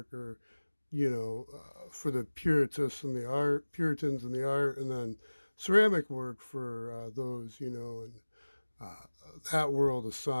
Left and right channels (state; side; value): inverted; both; correlation -1.00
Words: or, for the Puritans and the art, and then ceramic work for those, and uh, that world of